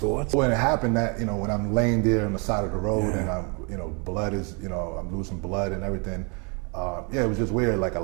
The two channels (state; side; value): quieter; left; 33.7 dB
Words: When it happened, that, you know, when I'm laying there on the side of the road, and I'm, you know, blood is, you know, I'm losing blood and everything. Yeah, it was just weird. Like a